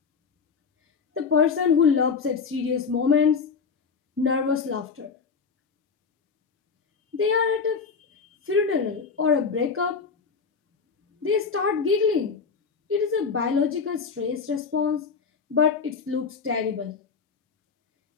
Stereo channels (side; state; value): right; quieter; 5.5 dB